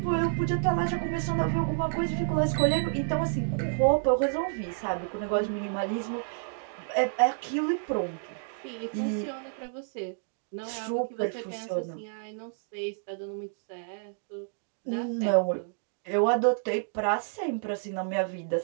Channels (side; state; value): left; silent; digital silence